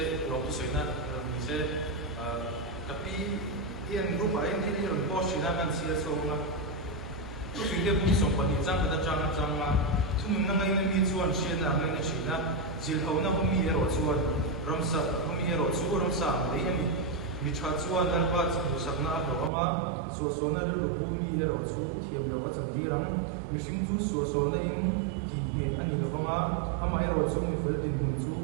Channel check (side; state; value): left; drops out; at 19.5 s